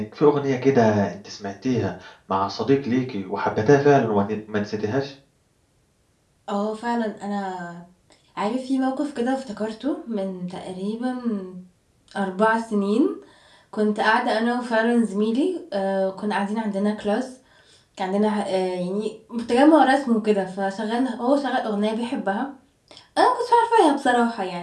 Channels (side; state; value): both; identical; correlation 1.00